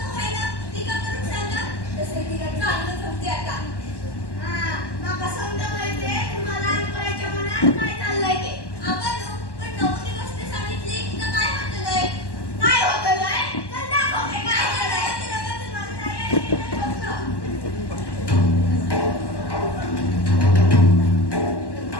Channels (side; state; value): right; late; 1.1 ms